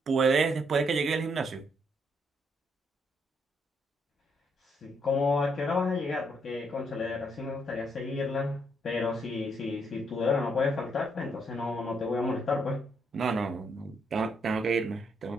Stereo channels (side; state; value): both; normal; correlation 0.74